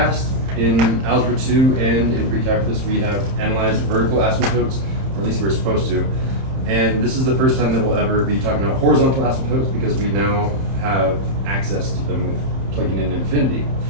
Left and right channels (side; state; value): left; late; 30 ms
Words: in Algebra 2 and in pre-calculus, we have analyzed vertical asymptotes, or at least we're supposed to. And this is the first time that we'll ever be talking about horizontal asymptotes because we now have access to them with plugging in infinity.